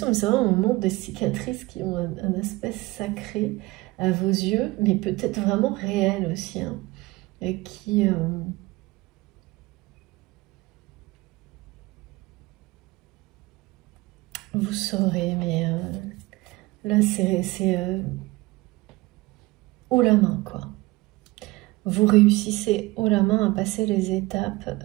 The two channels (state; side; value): quieter; left; 21.4 dB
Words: mais c'est vrai, on montre des cicatrices qui ont un aspect sacré à vos yeux, mais peut-être vraiment réel aussi, hein, et qui... vous saurez, mais là, c'est haut la main, quoi. Vous réussissez haut la main à passer les étapes